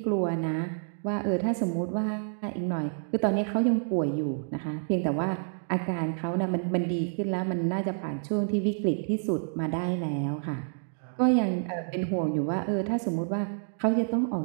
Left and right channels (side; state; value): left; silent; digital silence